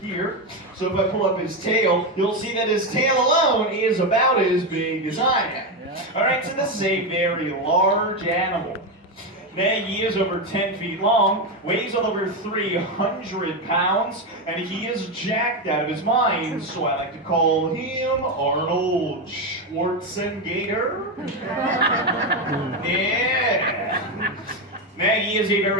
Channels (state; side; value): normal; both; correlation 0.11